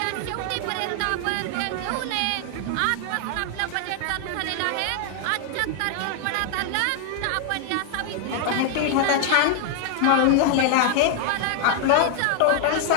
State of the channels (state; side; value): different; both; correlation 0.00